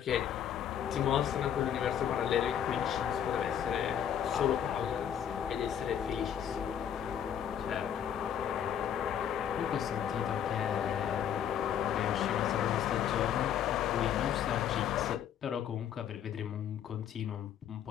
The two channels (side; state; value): right; quieter; 9.3 dB